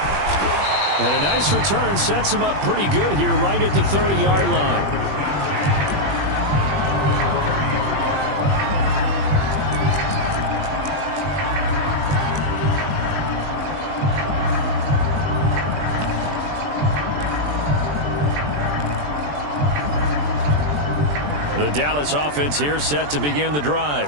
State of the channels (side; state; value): left; late; 20 ms